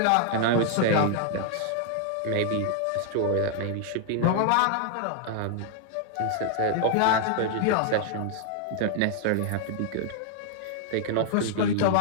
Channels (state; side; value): different; both; correlation 0.00